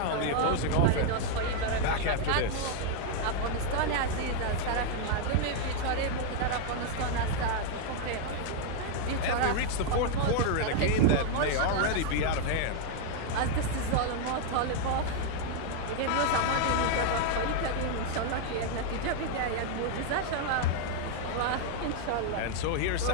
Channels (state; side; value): different; both; correlation 0.00